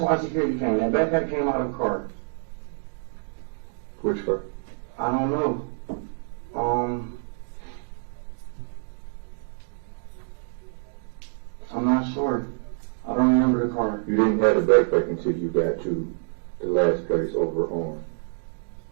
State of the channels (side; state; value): left; silent; digital silence